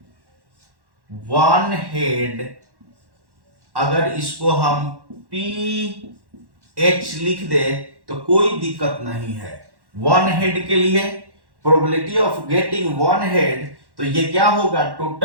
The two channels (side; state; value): left; late; 1.1 ms